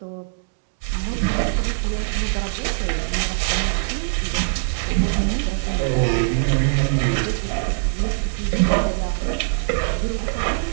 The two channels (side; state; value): left; silent; digital silence